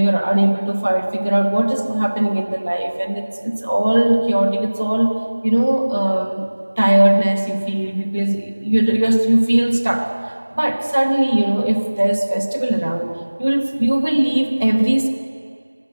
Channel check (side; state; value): both; inverted; correlation -1.00